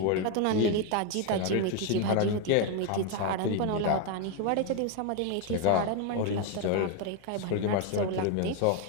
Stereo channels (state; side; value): different; both; correlation 0.01